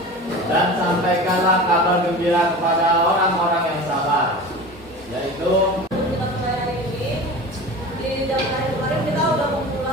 Dan sampaikanlah kabar gembira kepada orang-orang yang sabar, yaitu Kita mulai hari ini. Di jam terakhir kemarin kita udah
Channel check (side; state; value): both; normal; correlation 0.34